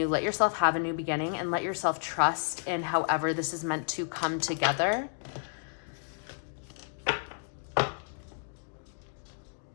Let yourself have a new beginning, and let yourself trust in however this is meant to come together.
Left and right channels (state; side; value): silent; right; digital silence